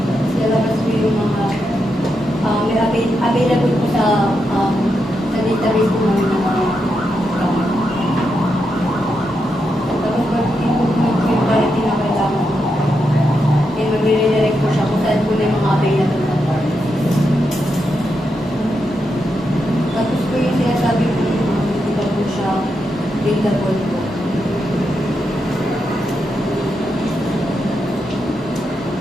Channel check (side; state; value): both; normal; correlation 0.84